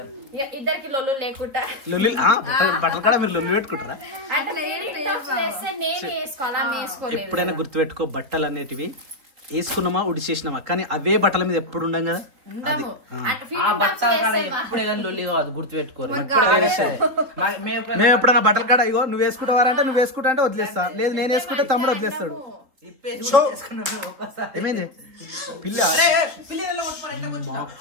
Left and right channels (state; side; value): late; left; 4.1 ms